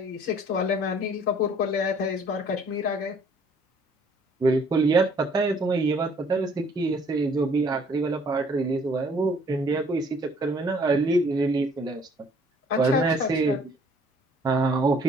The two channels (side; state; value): both; normal; correlation 0.59